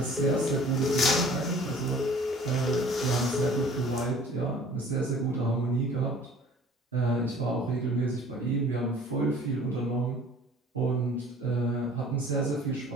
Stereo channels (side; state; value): both; normal; correlation 0.49